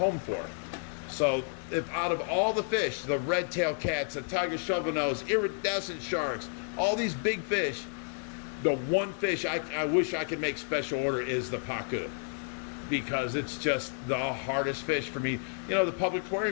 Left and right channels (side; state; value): right; silent; digital silence